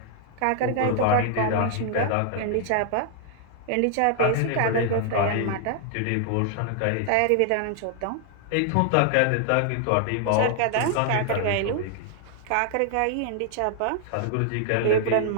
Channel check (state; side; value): different; both; correlation 0.00